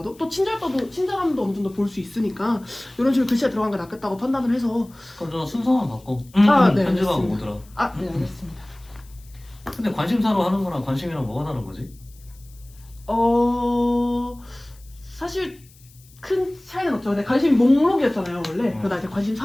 또 친절함도 어느 정도 볼 수 있으니까 이런 식으로 글씨가 들어간 게 낫겠다고 판단을 해서 그럼 저 순서만 바꿔. 네, 편집하고 알겠습니다. 오더라. 네, 알겠습니다. 근데 관심사로 하는 거랑 관심이랑 뭐가 다른 거지? 사실 큰 차이는 없죠. 근데 관심 목록이었잖아요 원래. 그러다 이제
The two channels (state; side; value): noise; left; hiss, 27 dB below the sound